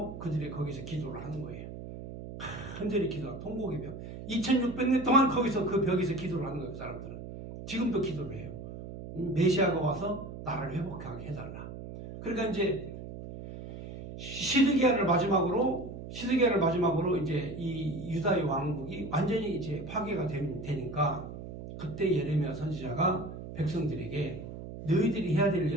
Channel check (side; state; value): right; noise; hum, 11 dB below the sound